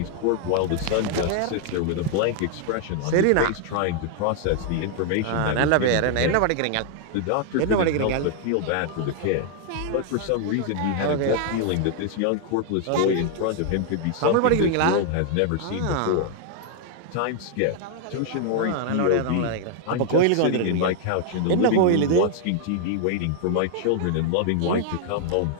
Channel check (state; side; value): different; both; correlation 0.00